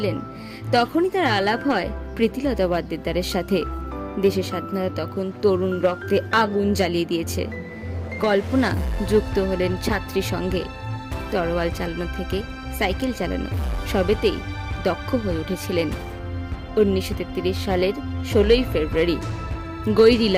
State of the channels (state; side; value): identical; both; correlation 1.00